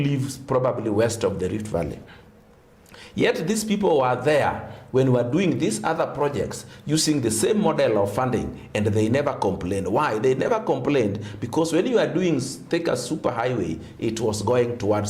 probably west of the Rift Valley. Yet these people were there when we were doing these other projects using the same model of funding, and they never complained. Why? They never complained because when you are doing Thika superhighway, it was going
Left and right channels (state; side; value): identical; both; correlation 1.00